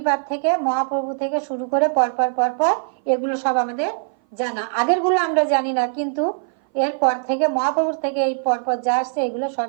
থেকে, মহাপ্রভু থেকে শুরু করে পরপর এগুলো সব আমাদের জানা। আগের গুলো আমরা জানি না, কিন্তু এরপর থেকে মহাপ্রভুর থেকে এই পরপর যা আসছে এগুলো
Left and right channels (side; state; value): left; silent; 59 dB below the other